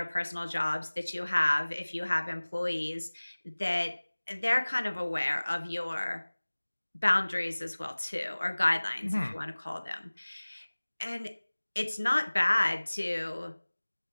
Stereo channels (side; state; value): both; inverted; correlation -1.00